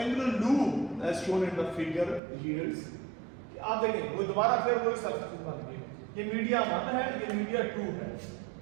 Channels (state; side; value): drops out; left; at 2.2 s